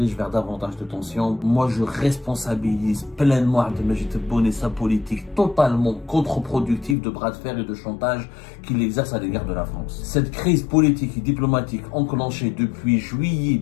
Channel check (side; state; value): right; drops out; at 7.0 s